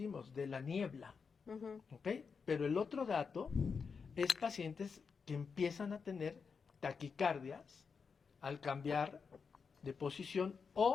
de la niebla, ¿okay? Pero el otro dato es pacientes que empiezan a tener taquicardias al cambiar de posición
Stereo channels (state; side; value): quieter; right; 5.6 dB